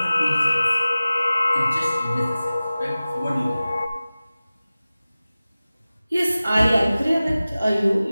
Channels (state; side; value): inverted; both; correlation -0.97